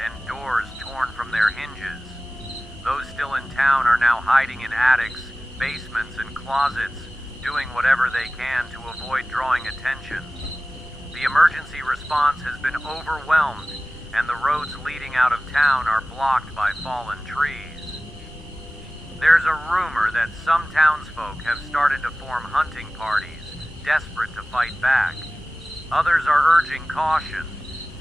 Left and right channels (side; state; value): both; normal; correlation 0.97